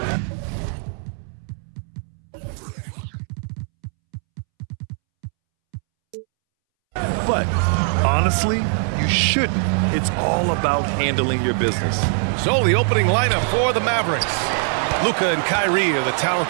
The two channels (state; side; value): silent; left; 65 dB below the other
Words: But honestly, you shouldn't. It's all about handling your business. So the opening lineup for the Mavericks. Luka and Kyrie are the